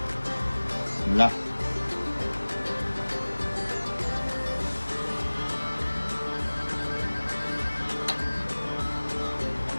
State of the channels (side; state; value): both; inverted; correlation -1.00